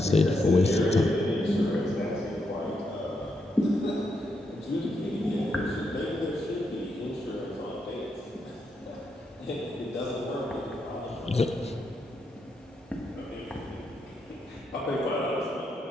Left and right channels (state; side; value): normal; both; correlation 0.81